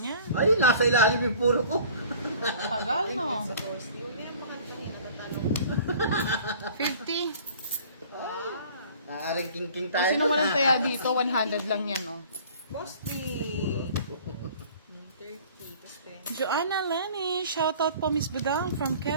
Ay, nasa ilalim yung puro ko. Tagal, no? Sa boss. Huwag niya pakantahin. Natatanong. 50. Wow. Naaring king-king Kung tayo. sino walang taya dito, 100 lang yan, oh. Boss D. 30. Tapos 20. Joanna Lenny, shoutout po Miss Budang from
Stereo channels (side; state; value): both; inverted; correlation -0.48